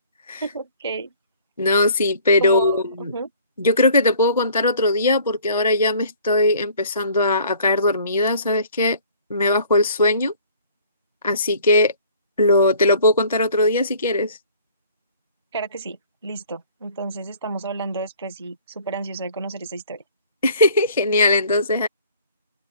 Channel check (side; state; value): both; inverted; correlation -0.53